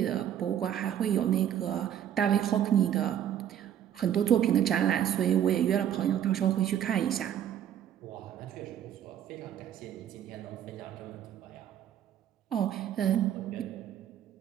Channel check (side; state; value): left; quieter; 10.2 dB